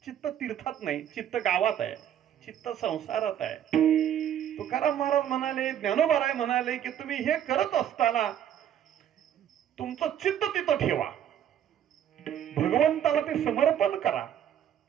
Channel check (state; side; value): quieter; left; 10.1 dB